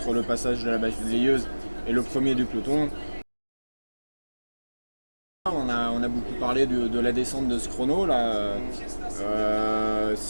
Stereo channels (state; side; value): inverted; both; correlation -1.00